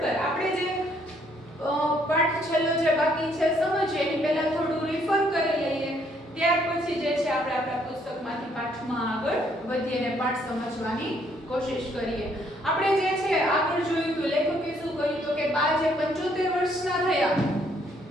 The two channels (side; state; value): both; normal; correlation 0.67